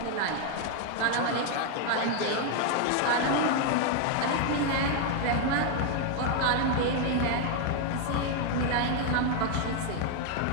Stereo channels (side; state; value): both; different; correlation 0.01